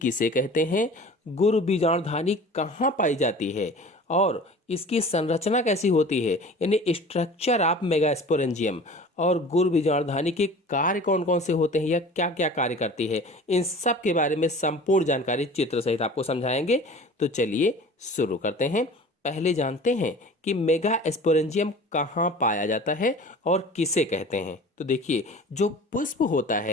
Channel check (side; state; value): both; normal; correlation 0.41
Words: कहते हैं, गुरु बीजाणुधानी कहाँ पाई जाती है और इसकी संरचना कैसी होती है, यानी स्ट्रक्चर ऑफ मेगा स्पोरेंजियम, और गुरु बीजाणुधानी के कार्य कौन कौन से होते हैं या क्या क्या कार्य करती है, इन सब के बारे में संपूर्ण जानकारी चित्र सहित आपको समझाएंगे। तो चलिए शुरू करते हैं। पहले जानते हैं कि मेगा स्पोरेंजियम कहाँ पाया जाता है और किसे कहते हैं। तो देखिए, जो पुष्प होता